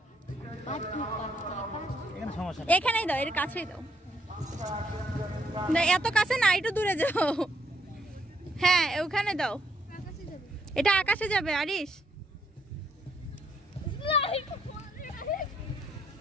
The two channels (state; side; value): normal; both; correlation 0.73